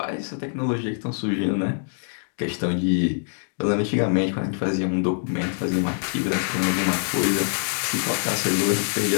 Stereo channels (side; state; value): right; silent; 62 dB below the other